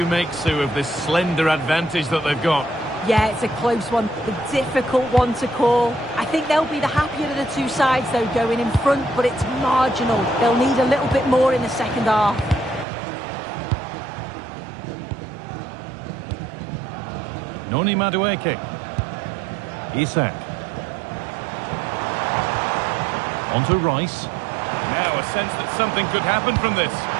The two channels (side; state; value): left; drops out; at 12.9 s